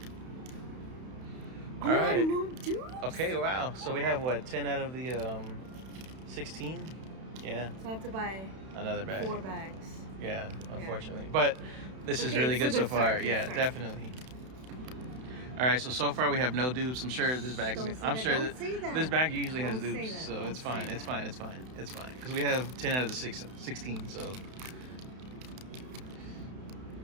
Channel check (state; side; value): late; left; 31 ms